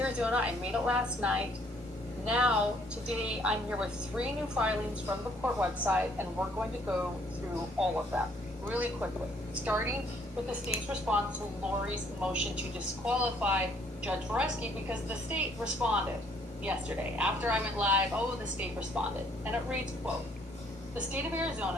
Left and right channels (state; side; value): normal; both; correlation 0.64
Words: I made it last night. Now, today, I'm here with 3 new filings from the court website, and we're going to go through all of them really quickly, starting with the state's response to Lori's motion to disqualify Judge Boreski because the state responded yesterday. After I went live, the state responded. And it reads, quote, the state of